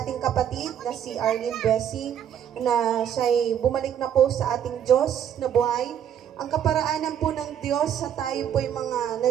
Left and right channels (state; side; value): quieter; left; 9.4 dB